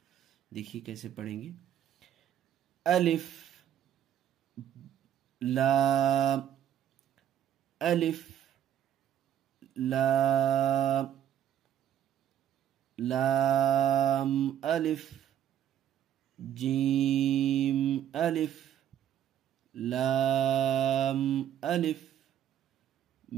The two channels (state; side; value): quieter; left; 10.5 dB